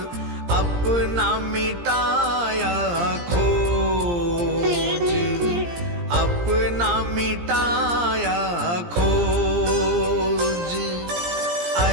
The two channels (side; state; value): left; late; 17 ms